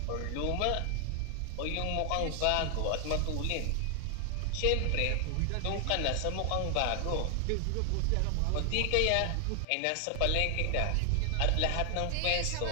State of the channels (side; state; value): both; different; correlation 0.00